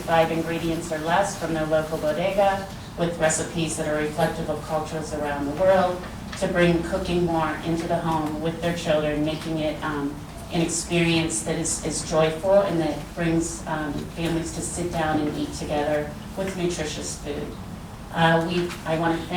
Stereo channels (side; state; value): both; identical; correlation 1.00